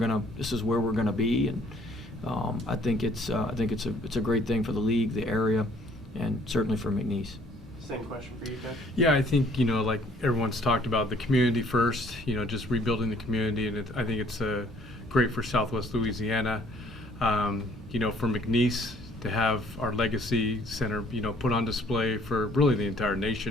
be, and I think it's a great thing for the league, the area, and certainly for McNeese. Same question for you, Ted. Yeah, I think, like everyone's talked about, the community first, just rebuilding the community, and I think it's great for Southwest Louisiana. For McNeese to have our Legacy Center, put on display for really the entire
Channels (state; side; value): normal; both; correlation 0.60